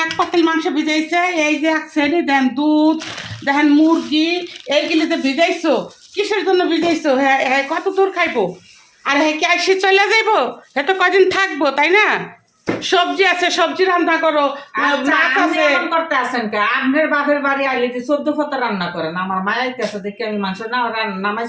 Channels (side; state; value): both; identical; correlation 1.00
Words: এক পাতিল মাংস ভিজাইছে, এই যে এক শ্রেণী দেন দুধ, দেখেন মুরগি, এইগুলি যে ভিজাইছো কিসের জন্য ভিজাইছো? হ্যাঁ হ্যাঁ, কত দূর খাইবো? আর হ্যাঁ কি আসি চলে যাইবো? হ্যাঁ তো কদিন থাকবো, তাই না? সবজি আছে, সবজি রান্না করো, মাছ আছে। করতে আসেন কে? আপনার বাপের বাড়ি আইলে যে 14 ফতা রান্না করেন, আমার মায়ের কাছে দেখে আমি মাংস না